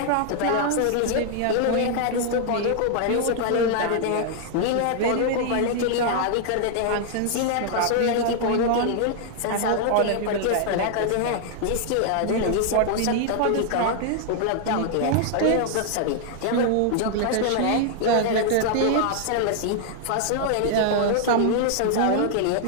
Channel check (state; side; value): different; both; correlation 0.00